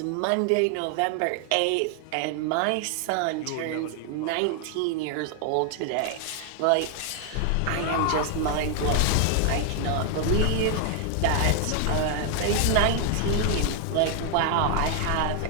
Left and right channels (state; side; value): different; both; correlation 0.00